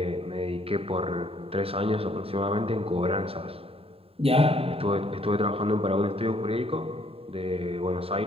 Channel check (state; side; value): late; left; 0.28 ms